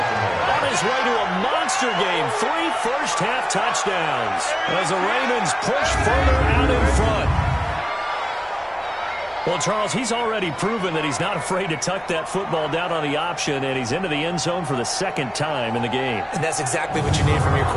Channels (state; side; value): identical; both; correlation 1.00